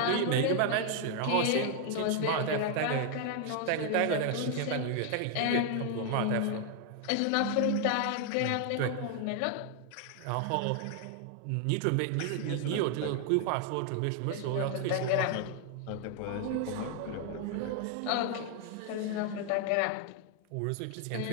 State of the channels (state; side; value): different; both; correlation 0.00